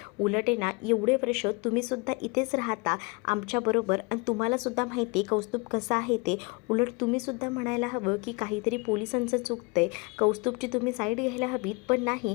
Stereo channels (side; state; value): right; quieter; 28.7 dB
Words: उलट ना एवढे वर्ष तुम्हीसुद्धा इथेच राहता आमच्याबरोबर आणि तुम्हालासुद्धा माहिती आहे कौस्तुभ कसं आहे ते, उलट तुम्हीसुद्धा म्हणायला हवं की काहीतरी पोलिसांचं चुकतं आहे, कौस्तुभची तुम्ही साईड घ्यायला हवीत, पण